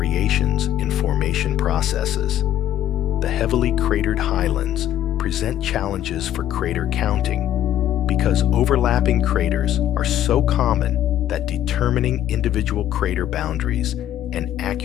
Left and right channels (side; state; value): right; quieter; 11.8 dB